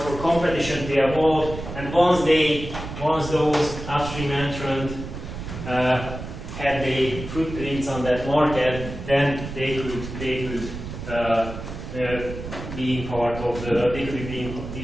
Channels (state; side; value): noise; right; rumble, 9 dB below the sound